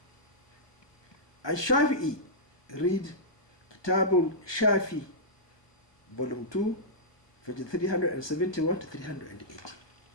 Al-Shafi'i, read Kitabul Shafi, volume 2, page 371 to 380.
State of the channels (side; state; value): right; late; 1.2 ms